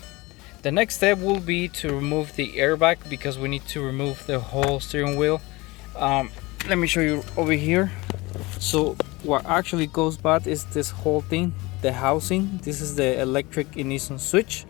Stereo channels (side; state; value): right; quieter; 22.5 dB